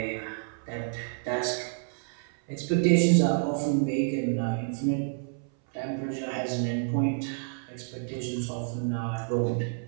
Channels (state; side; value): silent; left; 59 dB below the other